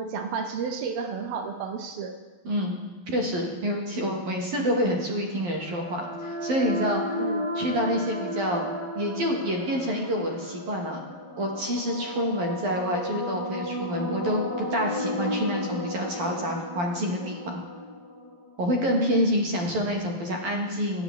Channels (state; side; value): late; left; 11 ms